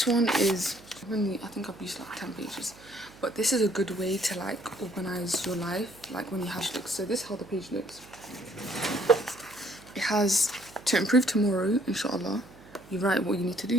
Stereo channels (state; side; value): noise; right; hum, 22 dB below the sound